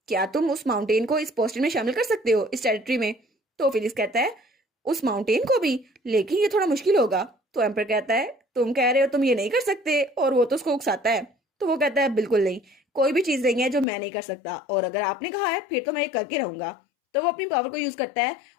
क्या तुम उस माउंटेन को इस पोस्टिन में शामिल कर सकते हो इस टेरिटरी में। तो फिलिक्स कहता है उस माउंटेन को भी, लेकिन ये थोड़ा मुश्किल होगा। तो एम्पर कहता है तुम कह रहे हो तुम ये नहीं कर सकते, और वो तो उसको उकसाता है। तो वो कहता है बिल्कुल नहीं, कोई भी चीज नहीं है जो मैं नहीं कर सकता, और अगर आपने कहा है फिर तो मैं ये करके रहूंगा। तो वो अपनी पावर को यूज करता है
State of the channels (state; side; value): drops out; right; at 13.9 s